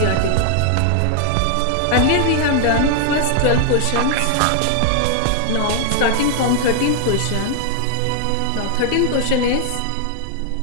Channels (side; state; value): both; different; correlation 0.00